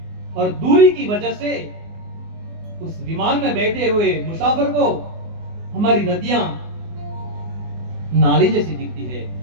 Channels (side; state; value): left; late; 24 ms